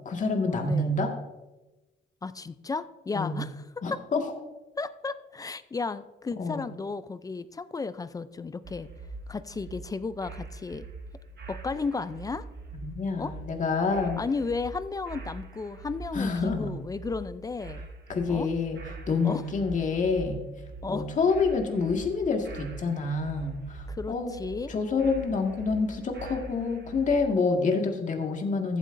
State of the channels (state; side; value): quieter; right; 3.5 dB